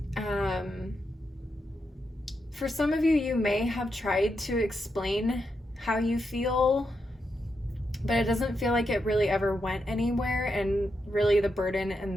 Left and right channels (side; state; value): both; normal; correlation 0.84